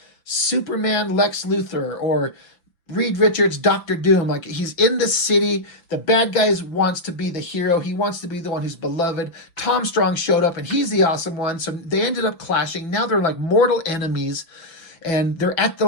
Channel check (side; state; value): right; late; 5.9 ms